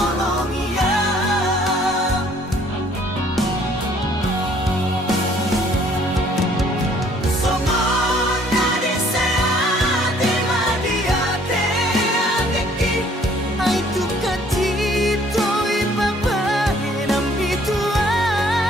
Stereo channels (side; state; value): both; normal; correlation 0.59